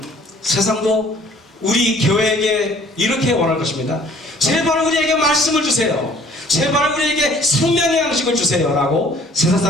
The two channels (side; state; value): both; normal; correlation 0.55